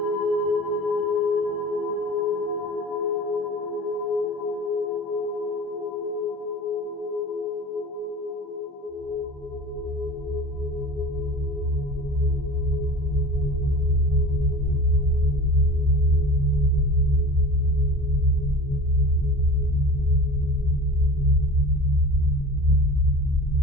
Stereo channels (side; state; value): both; normal; correlation 0.37